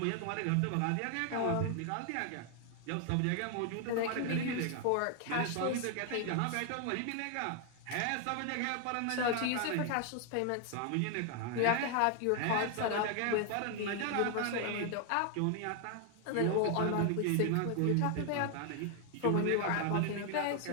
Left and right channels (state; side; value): different; both; correlation 0.00